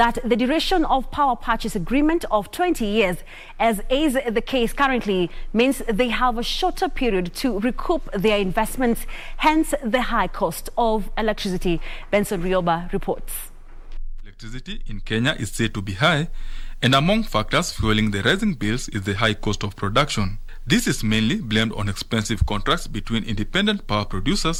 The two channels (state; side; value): identical; both; correlation 1.00